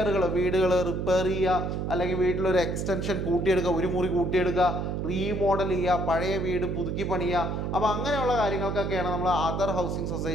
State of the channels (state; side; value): noise; right; hum, 2 dB below the sound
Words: വീടുകൾ റിപ്പയർ ചെയ്യുക, അല്ലെങ്കിൽ വീട്ടിലൊരു എക്സ്റ്റൻഷൻ കൂട്ടിയെടുക്കുക, ഒരു മുറി കൂട്ടിയെടുക്കുക, റീമോഡൽ ചെയ്യുക, പഴയ വീട് പുതുക്കി പണിയുക. അപ്പോൾ അങ്ങനെയുള്ള കാര്യങ്ങൾക്കൊക്കെയാണ് നമ്മൾ അതർ ഹൗസിംഗ്